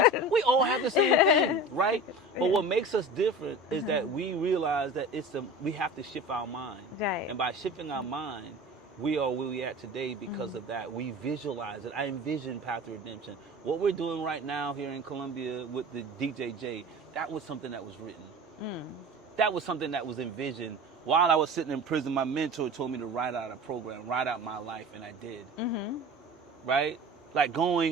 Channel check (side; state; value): both; normal; correlation 0.36